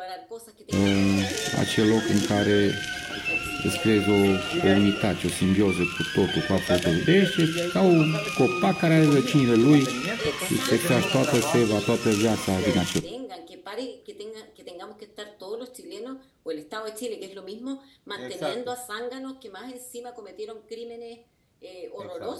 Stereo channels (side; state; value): both; identical; correlation 1.00